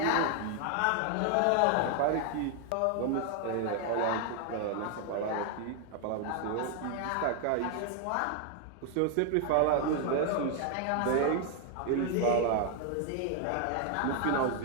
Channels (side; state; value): both; different; correlation 0.00